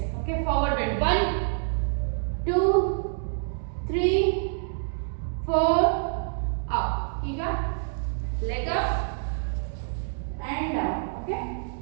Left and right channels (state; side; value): silent; left; digital silence